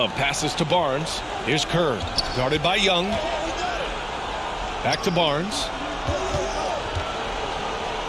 passes to Barnes. Here's Kerr. Guarded by Young. Back to Barnes.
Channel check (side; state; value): both; identical; correlation 1.00